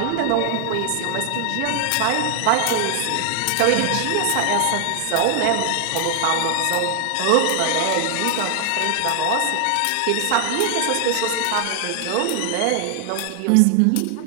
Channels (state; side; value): different; both; correlation 0.00